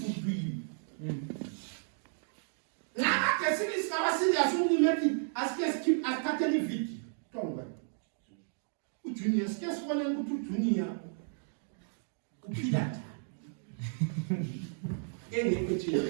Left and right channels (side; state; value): left; silent; digital silence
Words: to you. Now, the series is our serious only as keep as Catholic victim. Tonga. Junior, scarce one and go to Junior. Upidata. Any picture.